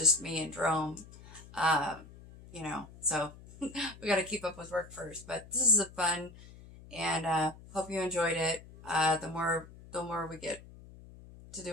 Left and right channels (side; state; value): left; noise; hum, 19 dB below the sound